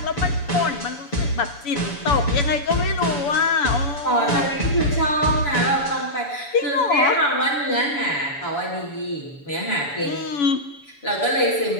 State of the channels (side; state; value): right; late; 7.0 ms